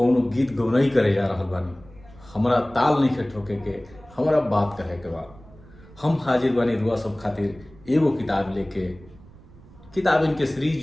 गीत गौनई करे जा रहल बानी। हमरा ताल नहीं ठोके के, हमरा बात कहे के बा। हम हाजिर बानी रुआ सब खातिर एगो किताब लेके। किताबिन के सीरीज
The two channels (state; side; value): noise; right; rumble, 22 dB below the sound